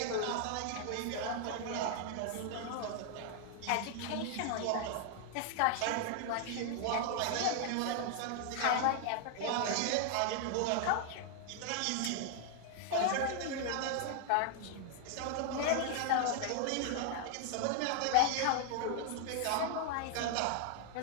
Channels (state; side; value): different; both; correlation 0.00